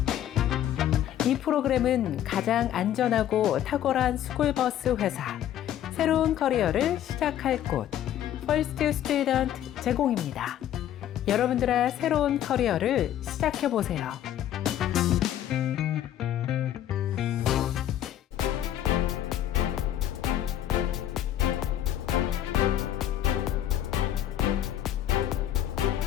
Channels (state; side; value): quieter; right; 11.4 dB